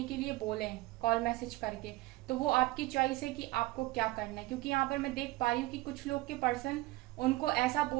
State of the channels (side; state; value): left; quieter; 19.3 dB